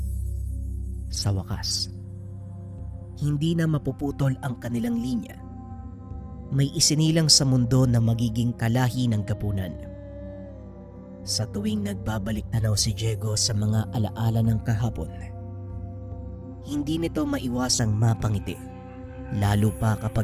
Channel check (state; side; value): identical; both; correlation 1.00